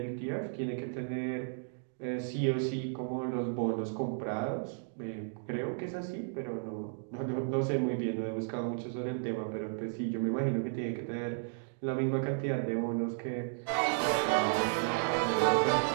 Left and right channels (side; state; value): left; silent; digital silence